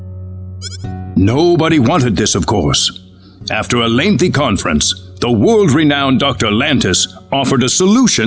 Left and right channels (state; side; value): identical; both; correlation 1.00